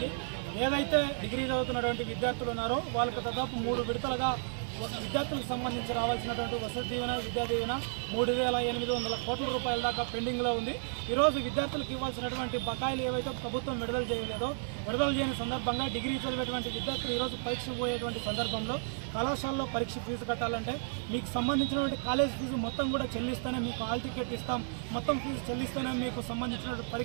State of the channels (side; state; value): left; silent; digital silence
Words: ఏదైతే డిగ్రీ చదువుతున్నటువంటి విద్యార్థులు ఉన్నారో వాళ్ళకు దాదాపు 3 విడతలుగా విద్యార్థులకు సంబంధించి రావాల్సినటువంటి వసతి దీవెన, విద్యా దీవెన 3,800 కోట్ల రూపాయల దాకా పెండింగ్లో ఉంది. ఈరోజు విద్యార్థులకు ఇవ్వాల్సినటువంటి బకాయిలు ఏవైతే ప్రభుత్వం విడుదల చేయలేదో, విడుదల చేయని సందర్భంగా డిగ్రీ చదివేటువంటి విద్యార్థులు ఈరోజు పరీక్ష పోయేటువంటి సందర్భంలో కళాశాలలో పరీక్ష ఫీజు కట్టాలంటే మీకు సంబంధించినటువంటి కాలేజ్ ఫీజు మొత్తం కూడా చెల్లిస్తేనే మీకు హాల్ టికెట్ ఇస్తాం, మొత్తం ఫీజు చెల్లిస్తేనే మీకు సంబంధించినటువంటి